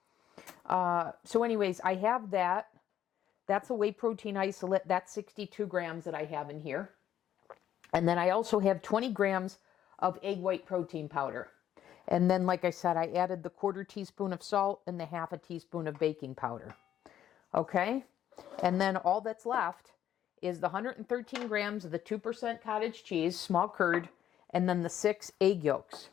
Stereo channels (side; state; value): right; quieter; 10.9 dB